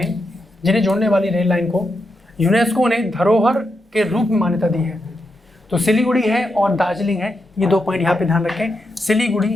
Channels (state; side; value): normal; both; correlation 0.84